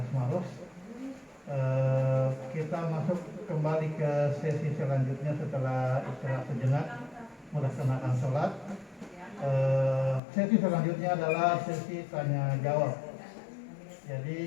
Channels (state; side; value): drops out; right; at 10.2 s